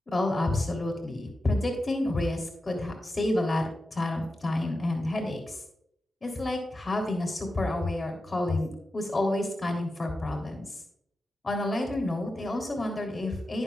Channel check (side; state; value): both; normal; correlation 0.91